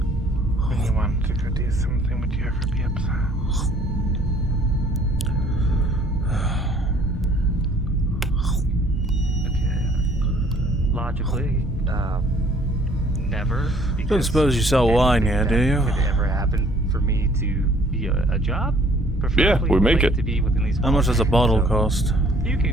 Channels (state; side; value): normal; both; correlation 0.58